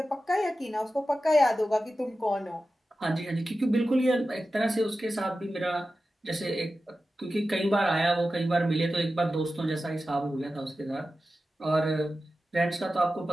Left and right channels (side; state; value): both; normal; correlation 0.93